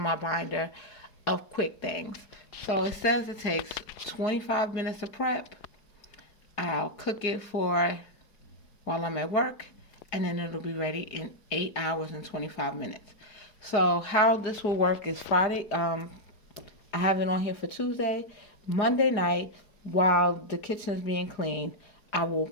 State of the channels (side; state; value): right; late; 4.8 ms